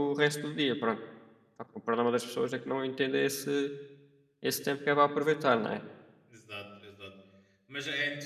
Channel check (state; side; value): identical; both; correlation 1.00